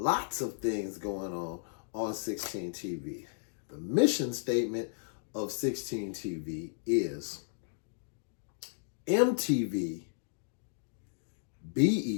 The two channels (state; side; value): silent; right; digital silence